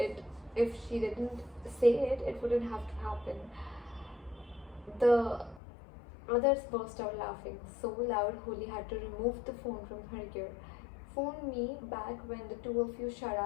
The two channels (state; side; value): drops out; right; at 5.6 s